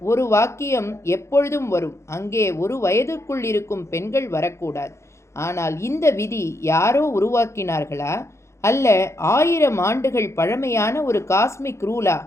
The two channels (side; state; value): right; late; 0.14 ms